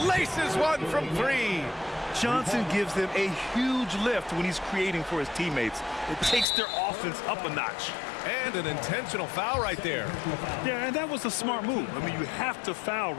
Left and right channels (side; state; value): right; drops out; at 6.5 s